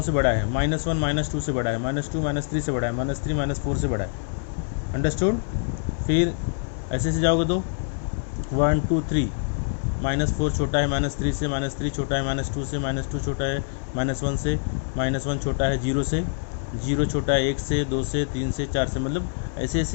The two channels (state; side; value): silent; right; 57 dB below the other